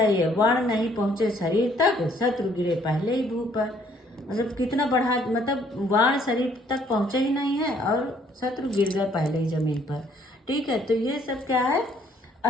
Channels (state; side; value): normal; both; correlation 0.64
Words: ये वर्ण नहीं पहुंचे शरीर तक, शत्रु गिरे पहले ही भू पर, मतलब कितना बढ़ा, मतलब वर्ण शरीर तक पहुंचे ही नहीं है और शत्रु गिर गए पहले ही जमीन पर, ठीक है। तो ये सब क्या है,